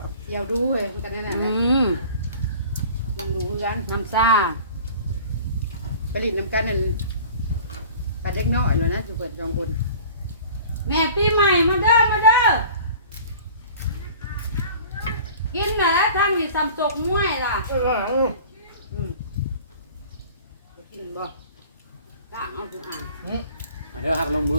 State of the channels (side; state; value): both; inverted; correlation -0.45